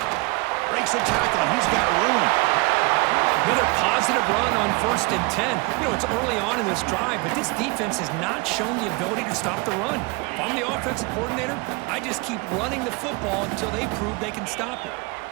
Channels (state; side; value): quieter; left; 26.3 dB